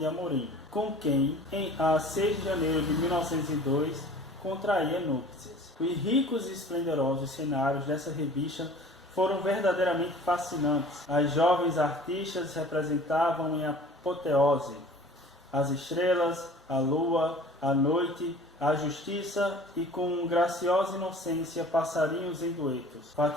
Amorim, com quem, a 6 de janeiro de 1902, contraía núpcias. Os ricos e esplendorosos cenários dessa revista foram verdadeiramente fascinantes. As jovens artistas representavam em apoteose as estrelas, a lua, a noite, a justiça e com graciosa inocência passarinhos em duetos.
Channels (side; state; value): both; normal; correlation 0.46